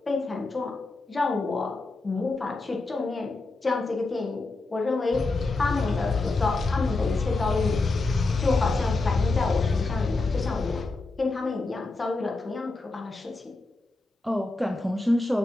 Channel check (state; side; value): quieter; right; 3.3 dB